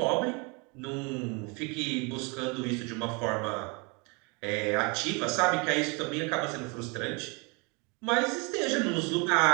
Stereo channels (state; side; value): quieter; left; 30.9 dB